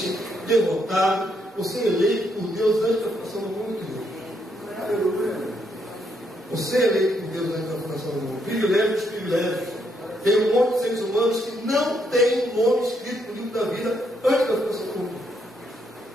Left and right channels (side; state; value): both; normal; correlation 0.75